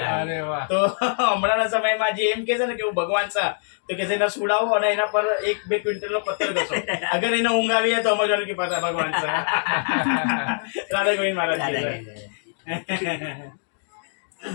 અરે વાહ તો હમણાંના સમયમાં જે એમ કે છે ને કે હું ભગવાન છે તો કે એને સુડાવો અને એના પર 1-2 ક્વિન્ટલનો પથ્થર ઘસો અગર એને ઊંઘ આવી જાય તો સમજવાનું કે પાછા ભગવાન છે રાધા ગોવિંદ મહારાજ કહે છે.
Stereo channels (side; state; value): right; silent; digital silence